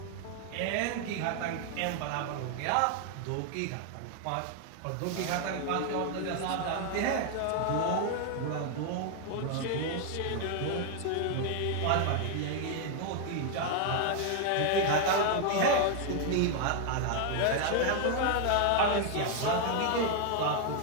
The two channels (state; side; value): different; both; correlation 0.00